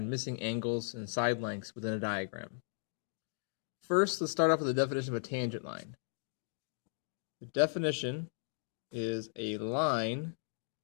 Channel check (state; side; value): silent; right; digital silence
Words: missing angles and side lengths within a diagram. First, let's start off with the definition of a tangent line. The definition is a line